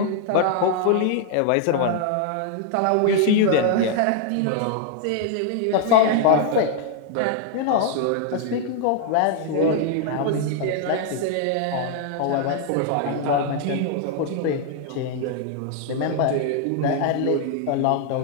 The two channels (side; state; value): both; different; correlation 0.00